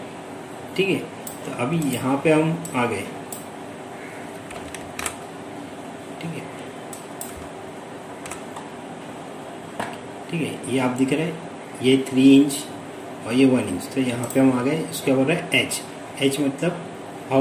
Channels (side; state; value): both; identical; correlation 1.00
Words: ठीक है, तो अभी यहाँ पे हम आ गए। ठीक है, ठीक है, ये आप दिख रहे हैं, ये 3 इंच और ये 1 इंच, तो यहाँ पे हम आ गए। इसके बोल रहा है एच मतलब